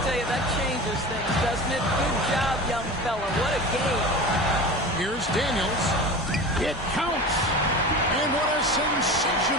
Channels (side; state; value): both; normal; correlation 0.32